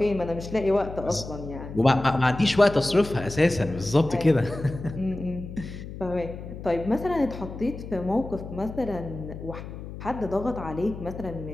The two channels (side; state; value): left; noise; hum, 11 dB below the sound